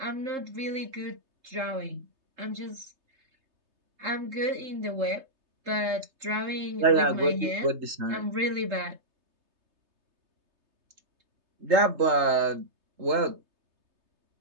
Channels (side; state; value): left; late; 3.3 ms